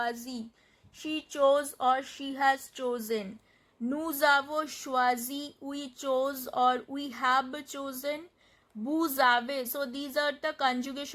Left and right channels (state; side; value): identical; both; correlation 1.00